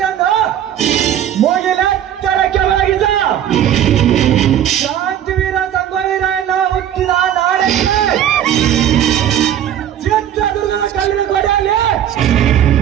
ಮುಗಿಲೆತ್ತರಕ್ಕೆ ಒಳಗಿದ ಶಾಂತಿವೀರ ಸಂಗೊಳ್ಳಿರ ಹುಟ್ಟಿದ ನಾಡಕ್ಕೆ ಚಿತ್ರದುರ್ಗದ ಕಲ್ಲಿನ ಕೊಡೆಯಲ್ಲಿ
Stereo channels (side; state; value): left; quieter; 10.5 dB